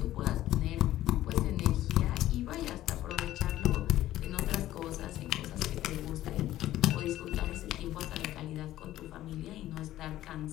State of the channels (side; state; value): right; quieter; 14.2 dB